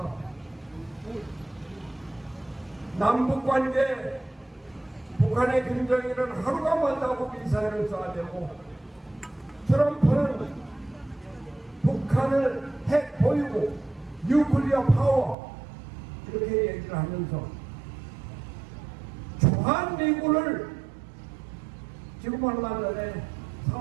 남북관계, 북한의 김정일은 하루가 멀다고 미사일을 쏴대고 트럼프는 북한을 핵 보유고 뉴클리어 파워 이렇게 얘기를 하면서 주한미군을 지금 얼마 전에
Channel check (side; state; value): left; drops out; at 15.4 s